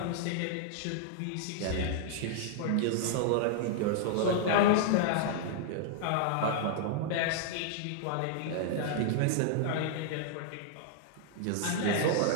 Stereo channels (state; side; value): different; both; correlation -0.01